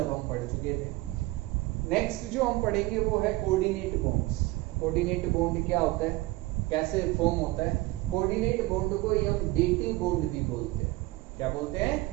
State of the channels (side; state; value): left; quieter; 20.2 dB